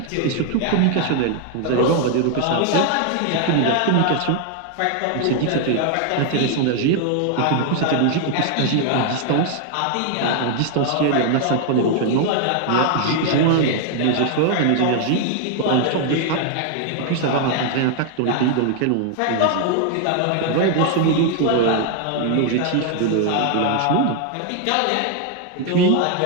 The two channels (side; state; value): both; different; correlation 0.00